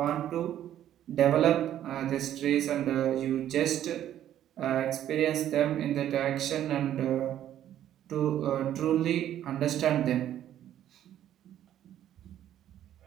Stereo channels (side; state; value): left; quieter; 11.4 dB